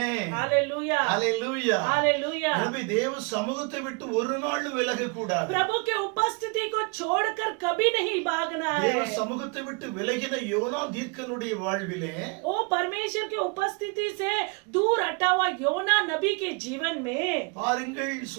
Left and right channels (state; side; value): quieter; left; 32.2 dB